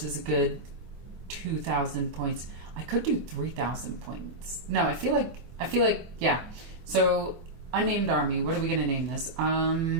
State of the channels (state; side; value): late; left; 24 ms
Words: is a good 2,000 points. I could do 3,000 points. No, I feel like, yeah. So, unnamed army. What are we going to name this?